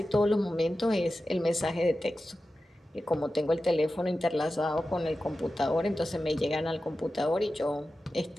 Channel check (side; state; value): both; normal; correlation 0.93